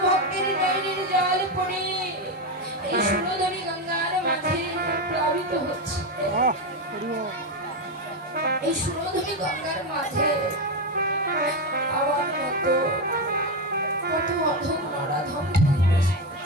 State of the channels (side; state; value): both; normal; correlation 0.12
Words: ভক্তের নয়নের জল পড়ে এই সুরধনী গঙ্গার মাঝে প্লাবিত হচ্ছে। এই সুরধনী গঙ্গার মাঝে আমার মতো কত অধম নরাধম